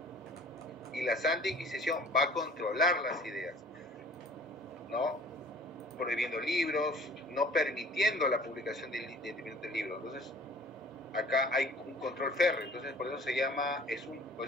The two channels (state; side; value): normal; both; correlation 0.50